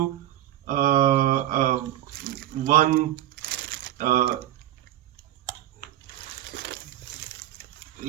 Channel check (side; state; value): left; quieter; 13.3 dB